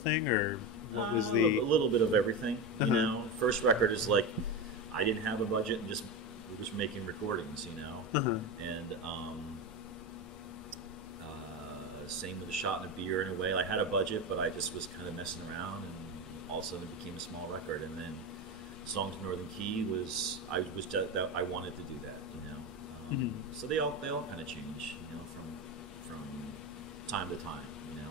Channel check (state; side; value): normal; both; correlation 0.19